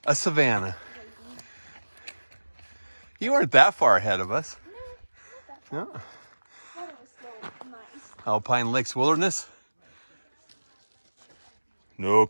a savanna. You weren't that far ahead of us. No, not No. that far. Thought it was so nice. Alpine Lakes Wilderness. No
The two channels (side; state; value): both; inverted; correlation -1.00